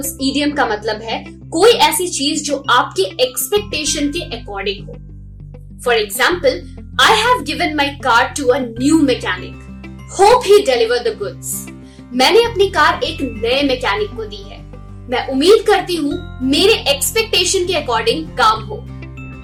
idiom का मतलब है कोई ऐसी चीज जो आपके एक्सपेक्टेशन के अकॉर्डिंग हो। For example, I have given my car to a new mechanic. Hope he deliver the goods. मैंने अपनी कार एक नए मैकेनिक को दी है। मैं उम्मीद करती हूँ मेरे एक्सपेक्टेशन के अकॉर्डिंग काम हो।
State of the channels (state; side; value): identical; both; correlation 1.00